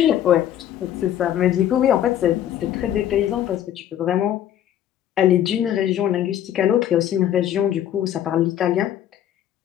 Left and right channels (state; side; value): quieter; right; 11.2 dB